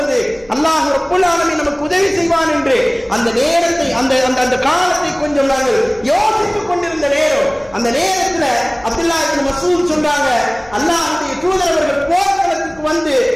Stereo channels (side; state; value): left; noise; hum, 27 dB below the sound